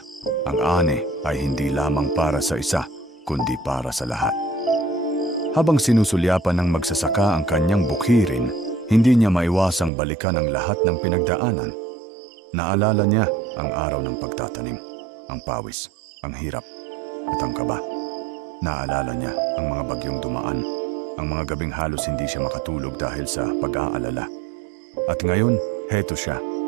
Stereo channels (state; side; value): drops out; left; at 9.9 s